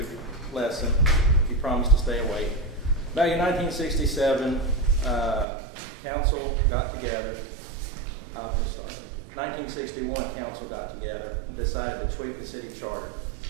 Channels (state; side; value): drops out; left; at 5.5 s